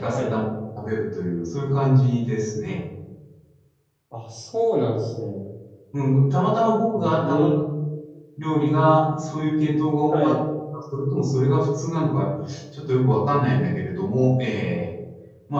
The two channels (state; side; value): identical; both; correlation 1.00